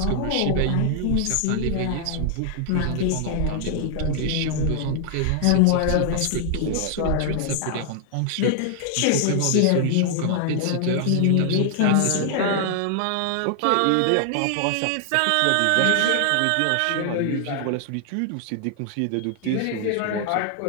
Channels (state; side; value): different; both; correlation 0.00